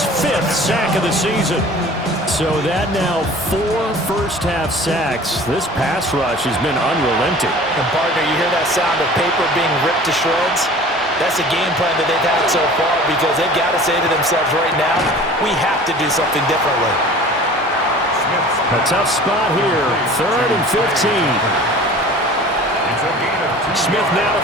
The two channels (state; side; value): normal; both; correlation 0.44